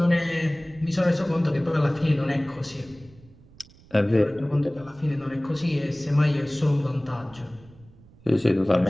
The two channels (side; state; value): right; noise; rumble, 25 dB below the sound